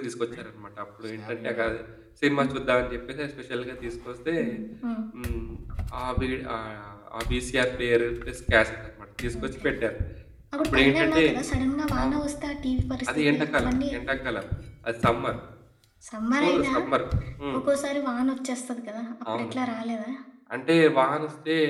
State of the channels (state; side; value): identical; both; correlation 1.00